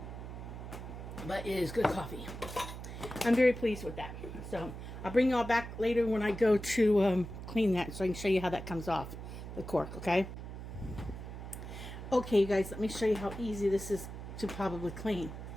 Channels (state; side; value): noise; right; hum, 9 dB below the sound